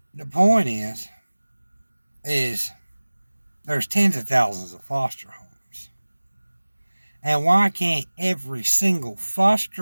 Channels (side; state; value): both; inverted; correlation -1.00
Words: the point is there's tens of thousands of foster homes, and why can't every single